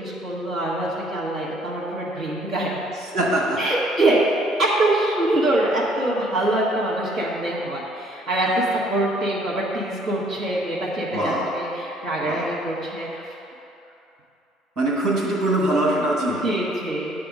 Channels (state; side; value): normal; both; correlation 0.61